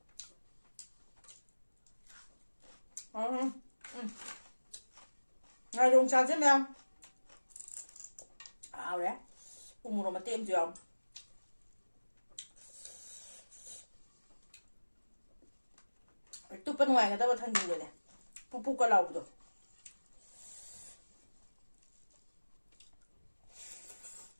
Ngay dùng trà chứ em ảo đấy cùng một mà tiêm chưa tụi bên ngoài người ta có thân gì rồi này pu pu cả lầu rồi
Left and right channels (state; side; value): inverted; both; correlation -1.00